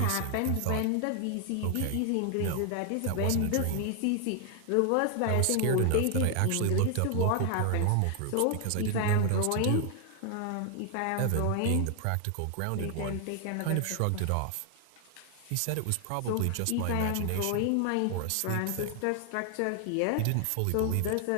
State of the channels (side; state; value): both; different; correlation 0.00